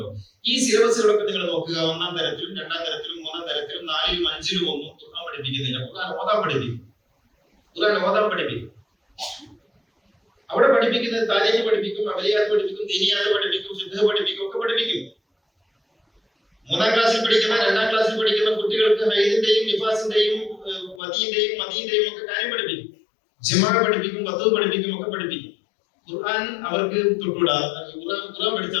ഈ സിലബസുകളൊക്കെ നിങ്ങൾ നോക്കുക. 1-ാം തരത്തിലും 2-ാം തരത്തിലും 3-ാം തരത്തിലും 4-ലും 5-ലും ഒന്നും ഖുർആൻ പഠിപ്പിക്കുന്നില്ല. ഖുർആൻ ഓതാൻ പഠിപ്പിക്കും. അവിടെ പഠിപ്പിക്കുന്നത് താരീഖ് പഠിപ്പിക്കും, അമലിയാത്ത് പഠിപ്പിക്കും, ദീനിയാത്ത് പഠിപ്പിക്കും, ഫിഖ് പഠിപ്പിക്കും, ഒക്കെ പഠിപ്പിക്കും. 3-ാം ക്ലാസ്സിൽ പഠിക്കുന്ന, 2-ാം ക്ലാസ്സിൽ പഠിക്കുന്ന കുട്ടികൾക്ക് ഹൈദിന്റെയും നിഫാസിന്റെയും മദീന്റെയും ഒക്കെ കാര്യം പഠിപ്പിക്കും. ജിമാ പഠിപ്പിക്കും, വധു പഠിപ്പിക്കും, ഒക്കെ പഠിപ്പിക്കും. ഖുർആൻ അവർക്ക് തൊട്ടുകൂടാ. ഖുർആൻ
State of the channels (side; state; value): right; drops out; at 21.0 s